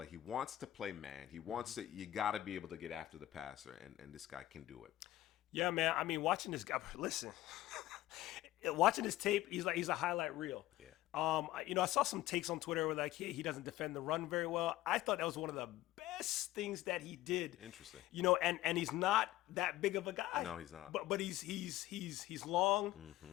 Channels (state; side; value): quieter; right; 15.5 dB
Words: he wants to play man. He wants to. You got to be able to get after the passer, and this guy can do it. Yeah, man. I mean, watching this guy, listen, watching his tape, he's a highlight reel. Yeah. I saw some takes on Twitter where like he doesn't defend the run very well. I thought that was one of the best things that he did. Interesting. And he's not that big of a guy. No, he's not. But he's long.